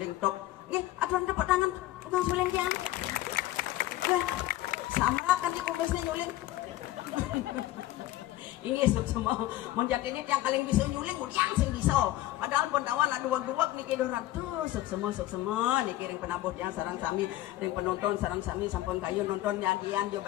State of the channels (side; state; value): right; quieter; 15.5 dB